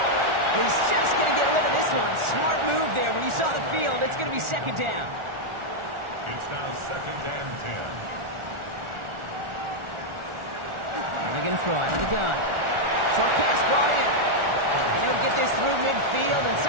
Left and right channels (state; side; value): late; left; 1.4 ms